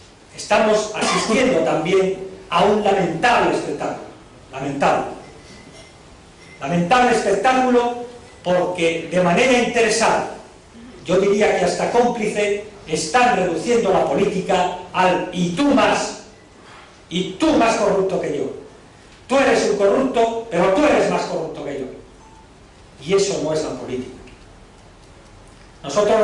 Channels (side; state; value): both; identical; correlation 1.00